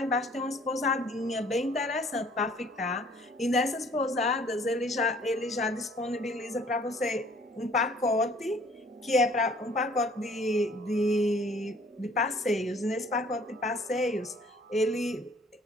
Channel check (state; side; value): normal; both; correlation 0.56